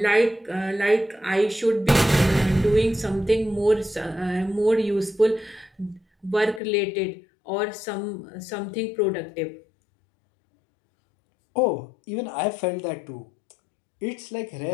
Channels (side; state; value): right; drops out; at 6.6 s